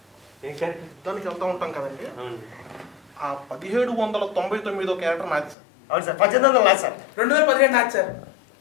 ఏం క్యారెక్టర్? దానికి వెళ్తూ ఉంటాం కదండి. ఆ 1799 క్యారెక్టర్ నాది సార్. అవును సార్. 1800 నాది సార్. 2015 నాది సార్.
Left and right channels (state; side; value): drops out; right; at 5.6 s